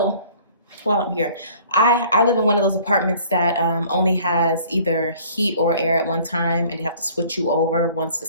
while I'm here, I live in one of those apartments that only has either heat or air at one time, and they have to switch you over once the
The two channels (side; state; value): both; inverted; correlation -0.52